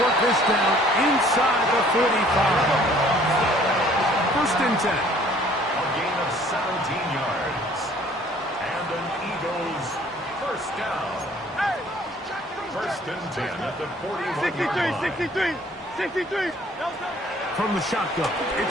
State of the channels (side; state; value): both; normal; correlation 0.56